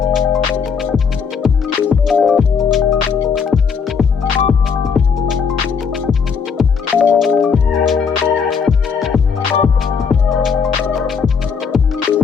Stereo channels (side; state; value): right; quieter; 6.0 dB